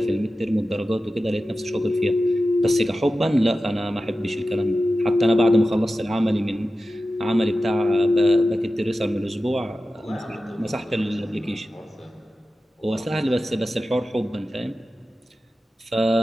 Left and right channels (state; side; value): normal; both; correlation 0.93